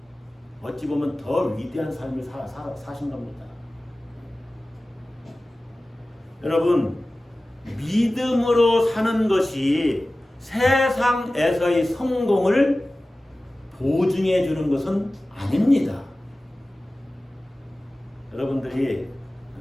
어찌 보면 더 위대한 삶을 사신 겁니다. 여러분, 믿음으로 사는 것이 세상에서의 성공을 보증해 주는 것은 아닙니다. 여러분들이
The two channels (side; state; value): both; normal; correlation 0.97